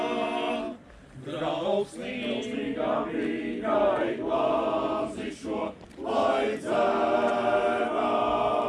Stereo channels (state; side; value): identical; both; correlation 1.00